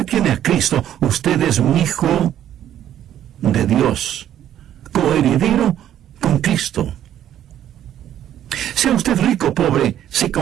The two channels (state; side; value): quieter; left; 11.1 dB